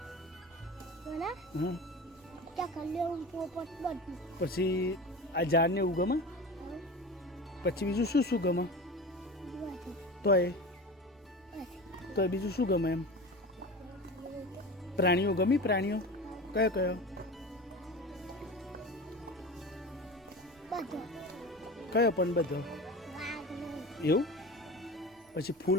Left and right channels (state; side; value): normal; both; correlation 0.32